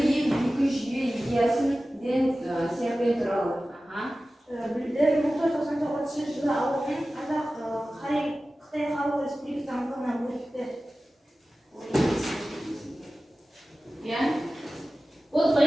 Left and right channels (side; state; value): both; normal; correlation 0.96